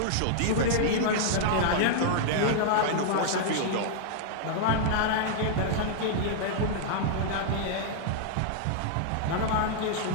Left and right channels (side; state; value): both; different; correlation -0.01